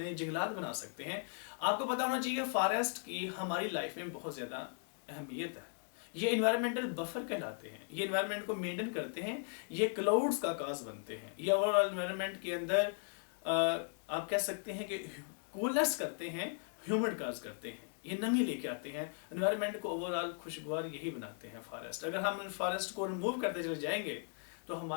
जंगलात बना सकते हैं। आपको पता होना चाहिए फॉरेस्ट की हमारी लाइफ में बहुत ज्यादा अहमियत है। ये इन्वायरमेंटल बफर कहलाते हैं, ये इन्वायरमेंट को मेंटेन करते हैं, ये क्लाउड्स का काज बनते हैं, ये ओवरऑल इन्वायरमेंट के अंदर आप कह सकते हैं कि कूलनेस करते हैं, ह्यूमिड काज करते हैं, ये नमी लेके आते हैं, एनवायरनमेंट को ओवरऑल खुशगवार यही बनाते हैं फॉरेस्ट। अगर हम फॉरेस्ट को रिमूव करते चले जाएंगे तो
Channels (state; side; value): silent; right; 53 dB below the other